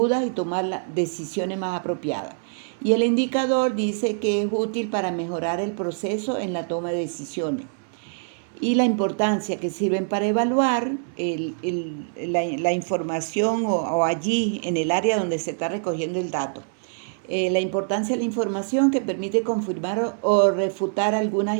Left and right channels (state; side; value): silent; left; 62 dB below the other